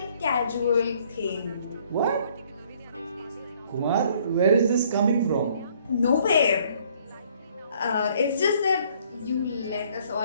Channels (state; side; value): inverted; both; correlation -0.62